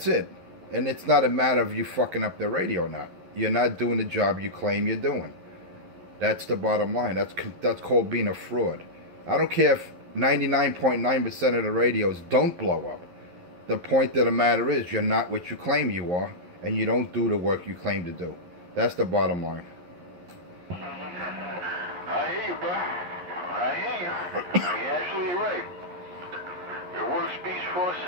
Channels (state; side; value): late; left; 11 ms